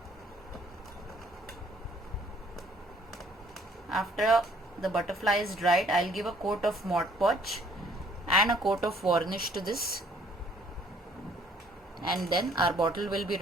After the butterfly is dried, I'll give a coat of Mod Podge and a coat of varnish to this, and then our bottle will be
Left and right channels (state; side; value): normal; both; correlation 0.60